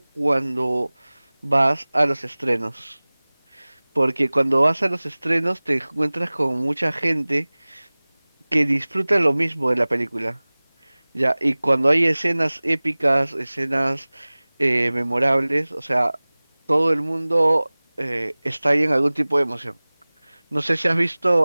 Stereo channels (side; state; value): both; inverted; correlation -1.00